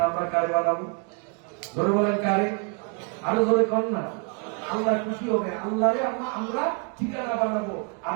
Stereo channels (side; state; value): left; quieter; 37.5 dB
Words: আমরা কারে বানাবো? ধরে বলেন কারে? আরো ধরে কর না। আল্লাহ খুশি হবে, আল্লাহরে আমরা ঠিকানা বানাবো।